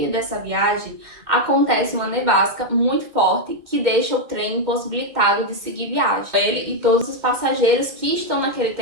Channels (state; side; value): late; left; 2.1 ms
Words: dessa viagem, acontece uma nevasca muito forte que deixa o trem impossibilitado de seguir viagem. Ele e todos os passageiros que estão naquele